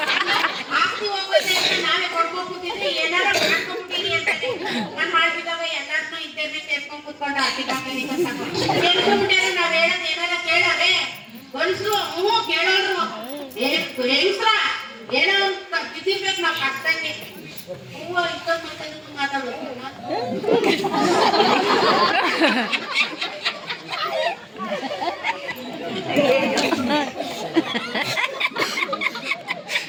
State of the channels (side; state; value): both; identical; correlation 1.00